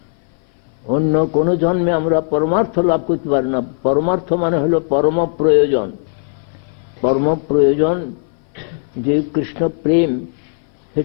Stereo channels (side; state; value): right; silent; 57 dB below the other